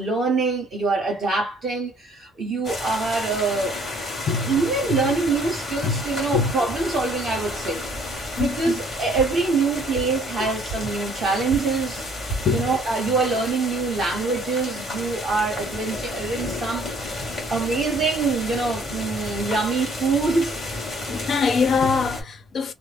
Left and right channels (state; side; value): normal; both; correlation 0.60